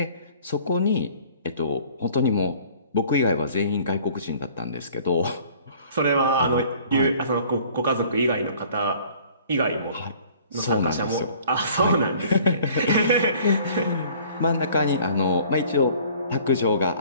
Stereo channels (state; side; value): inverted; both; correlation -0.52